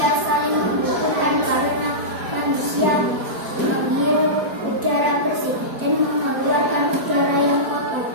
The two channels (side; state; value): left; late; 4.4 ms